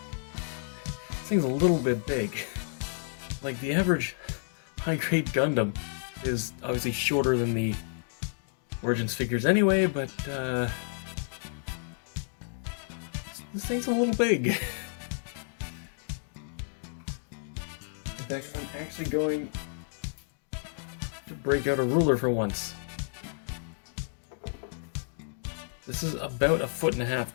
thing's a little bit big. Like, the average high-grade Gundam is obviously shorter than the Origins figures anyway, but this thing's a little big. In fact, I'm actually going to break out a ruler for once. This is about 1.5 feet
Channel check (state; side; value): silent; right; digital silence